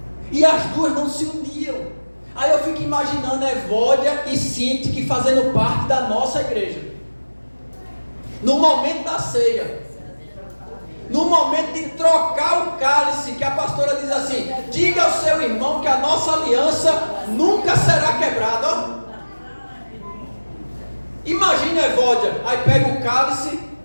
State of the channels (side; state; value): both; inverted; correlation -1.00